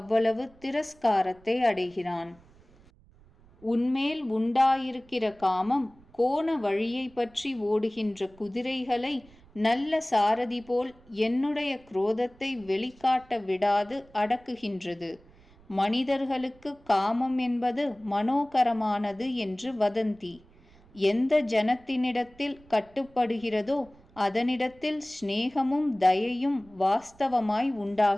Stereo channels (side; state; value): right; noise; rumble, 27 dB below the sound